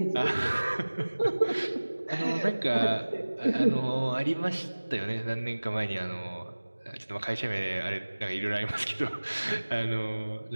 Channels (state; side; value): inverted; both; correlation -1.00